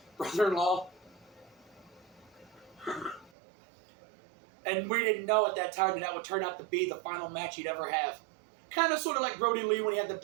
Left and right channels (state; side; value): drops out; left; at 3.3 s